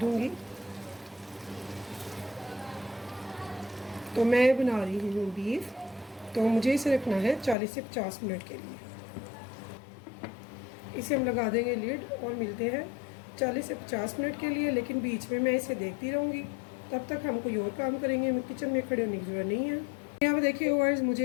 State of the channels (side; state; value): right; drops out; at 7.6 s